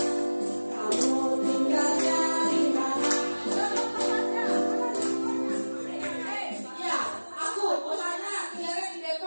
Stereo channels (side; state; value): both; inverted; correlation -1.00